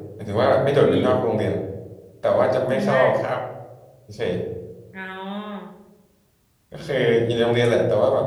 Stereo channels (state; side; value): identical; both; correlation 1.00